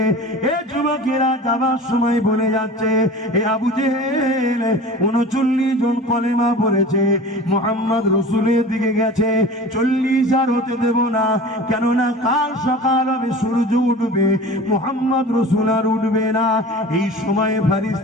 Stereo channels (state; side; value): normal; both; correlation 0.38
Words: এ যুবকেরা যাবার সময় বলে যাচ্ছে, এ আবু জেহেল 39 জন কলেমা পড়েছে, মুহাম্মদ রাসূলের দিকে গেছে, 40 আর হতে দেব না। কেননা কাল সকাল হবে, সূর্য উঠবে, মুহাম্মদ রাসূল আর উঠবে না। এই সময়